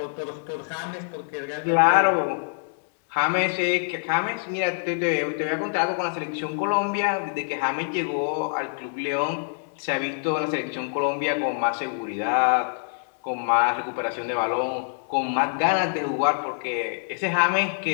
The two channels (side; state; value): right; silent; digital silence